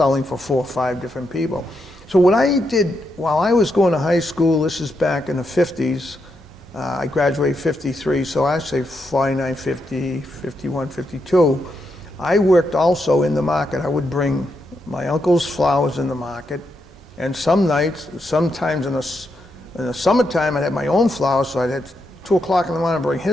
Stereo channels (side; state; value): both; normal; correlation 0.82